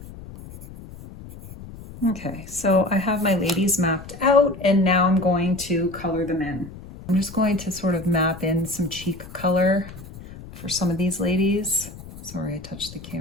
Okay, so I have my ladies mapped out and now I'm going to color them in. I'm just going to sort of map in some cheek color for some of these ladies. Sorry, I touched the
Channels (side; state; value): left; noise; rumble, 15 dB below the sound